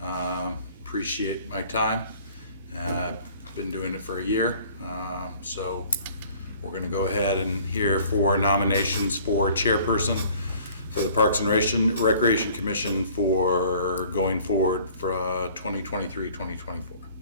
Appreciate my time. Been doing it for a year, so we're going to go ahead and hear 4 nominations for chairperson for the Parks and Recreation Commission for going forward for 2023-2024.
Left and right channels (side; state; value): both; inverted; correlation -0.52